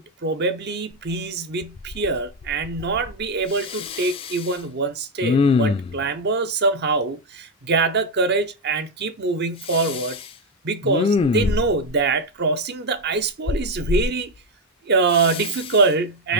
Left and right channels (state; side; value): normal; both; correlation 0.05